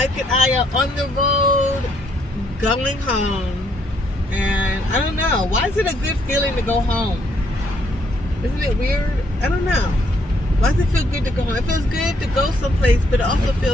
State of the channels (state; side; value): normal; both; correlation 0.70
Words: and I are on the road going home, and I don't know, why is it a good feeling to go home? Isn't it weird? I don't know. Why does it feel good to go home? It feels good to go someplace, but it also